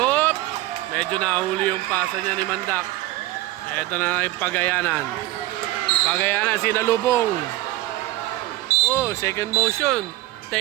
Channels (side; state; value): left; quieter; 17.3 dB